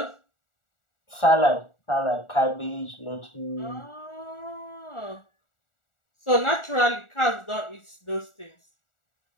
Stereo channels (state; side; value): late; right; 1.4 ms